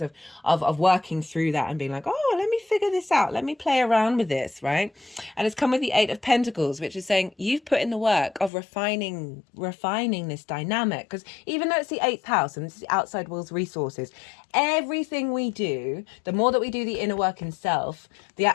of working through that and being like, oh, let me figure this out, let me play around with this, right? And it's come with the 8 of Pentacles, which is saying you've put in the work of refining this dynamic, because even though it's the 8th house and this is the outside world's resources, everything we do, the more that we do the inner work in self,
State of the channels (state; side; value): drops out; right; at 8.5 s